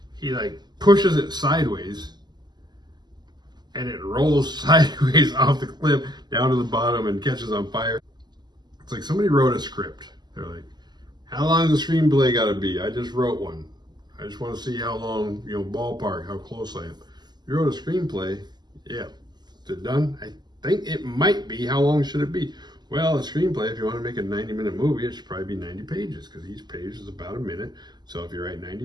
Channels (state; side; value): late; left; 0.21 ms